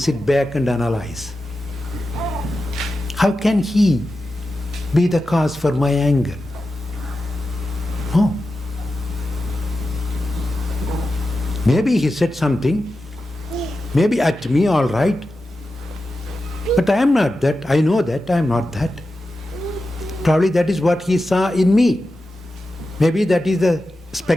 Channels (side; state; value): both; normal; correlation 0.92